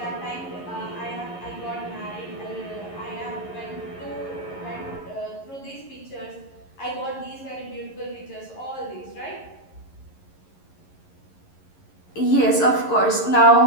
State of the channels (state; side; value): late; right; 11 ms